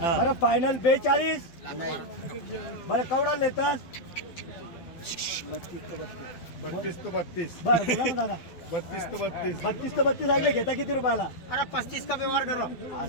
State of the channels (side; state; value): right; late; 12 ms